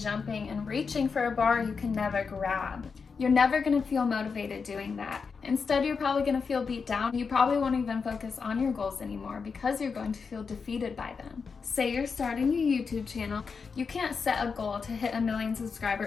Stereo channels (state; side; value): quieter; right; 5.4 dB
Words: reaching for a bar you can never grab. You're never going to feel motivated doing that. Instead, you're probably going to feel beat down. You probably won't even focus on your goals anymore because you're going to feel defeated by them. Say you're starting your YouTube channel. You can't set a goal to hit 1 million